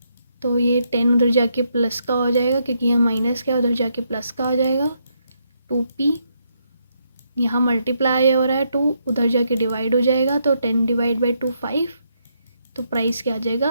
तो ये 10 उधर जाके प्लस का हो जाएगा, क्योंकि यहाँ माइनस का उधर जाके प्लस का हो जाएगा। 2p यहाँ मल्टीप्लाई हो रहा है, 2 उधर जाके डिवाइड हो जाएगा, तो 10 / 2 5, तो प्राइस क्या आ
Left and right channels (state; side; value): inverted; both; correlation -0.77